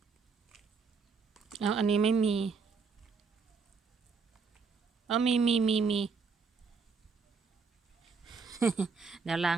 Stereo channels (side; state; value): left; quieter; 5.1 dB